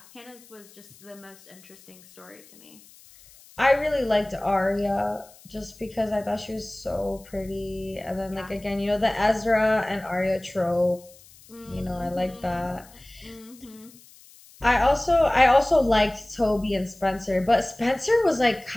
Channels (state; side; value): noise; left; hiss, 24 dB below the sound